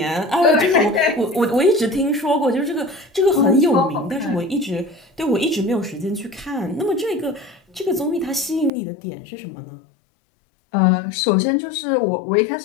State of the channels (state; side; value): drops out; right; at 8.7 s